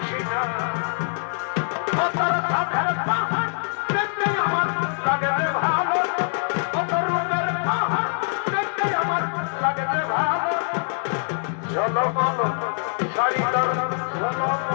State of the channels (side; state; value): right; silent; digital silence